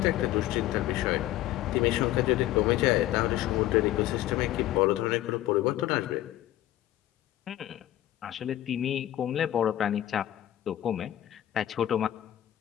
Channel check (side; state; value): right; quieter; 13.8 dB